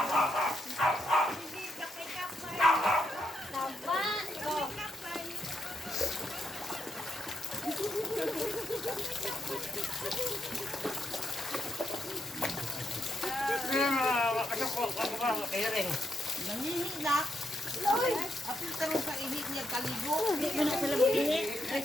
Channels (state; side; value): normal; both; correlation 0.80